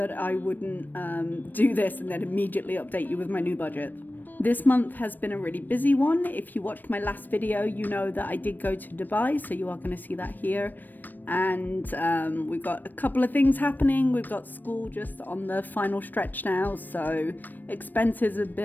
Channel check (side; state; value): right; late; 0.090 ms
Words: I wouldn't do this and then immediately update you with my new budget. This month has been a really busy one. If you watched my last video, you know that I did go to Dubai, so you are going to see that here. And we've got a couple of things happening. We've got school just on the final stretch now, so expenses have